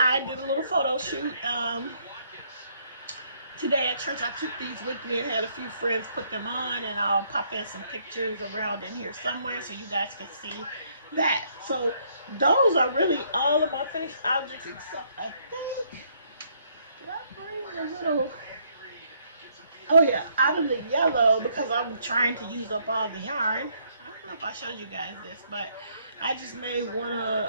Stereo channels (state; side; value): inverted; both; correlation -0.69